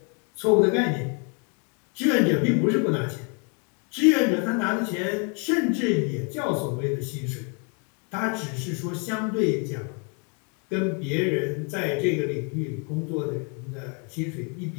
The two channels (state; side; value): quieter; right; 36.4 dB